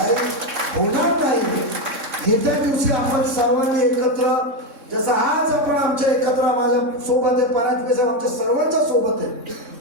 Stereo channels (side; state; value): left; late; 3.6 ms